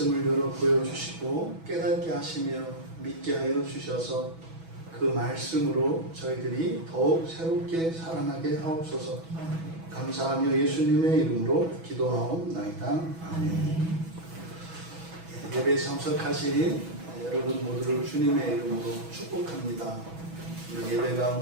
열어 보여주시고 깨닫게 하시며 믿게 하여 주셔서 그 말씀으로 저희들이 더욱 새롭게 살아나게 하옵소서. 감사하며 예수님의 이름으로 기도하옵나이다. 아멘. 예배에 참석하신 여러분 모두를 주님의 이름으로 축복합니다. 예배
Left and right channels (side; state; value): left; late; 6.1 ms